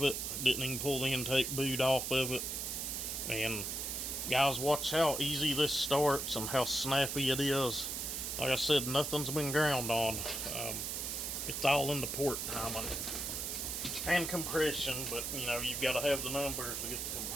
it. Didn't even pull the intake boot off of it. And guys, watch how easy this starts and how snappy it is. Like I said, nothing's been ground on. It's all in the port timing and compression, but you know, you've got to have the numbers to get the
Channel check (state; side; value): noise; right; hiss, 3 dB below the sound